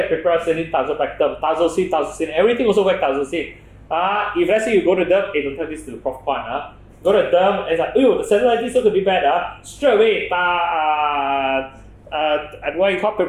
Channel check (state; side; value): identical; both; correlation 1.00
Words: Piperacillin, tazobactam, tazocine, everything also works tazocine. If let's say you go to them, don't tell this to the Prof. Kwan, go to them and it's like, the cellulitis is going to be bad. Straight away, what you call